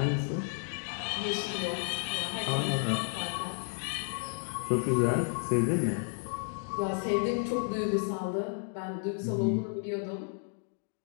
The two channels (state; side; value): silent; right; 56 dB below the other